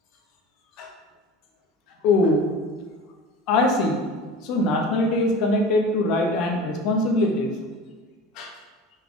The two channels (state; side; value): normal; both; correlation 0.36